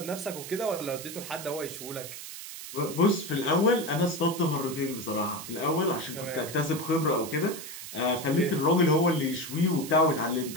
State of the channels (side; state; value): right; noise; hiss, 11 dB below the sound